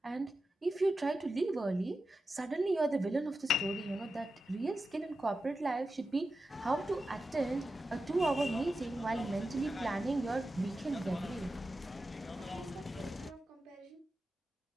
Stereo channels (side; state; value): both; normal; correlation 0.91